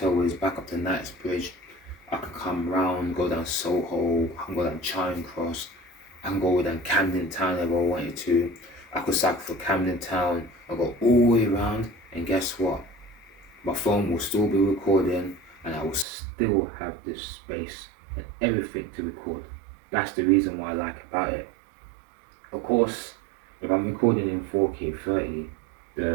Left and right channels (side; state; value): left; drops out; at 16.1 s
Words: is, back up to Knightsbridge. I can come round, go down Soho, I can go down Charing Cross, I can go down Camden Town if I wanted to. I could cycle for Camden Town, I go all the way around, and guess what? My phone will still be recording, and I will still have this space and everything to record. That's the reason why I like about it. Of course, if I'm recording in 4K 30,